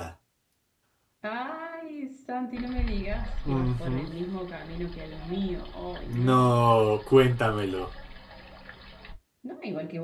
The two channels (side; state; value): both; identical; correlation 1.00